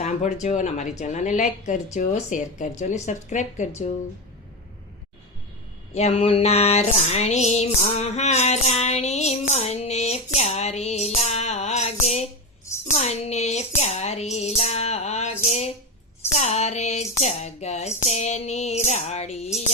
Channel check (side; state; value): both; normal; correlation 0.16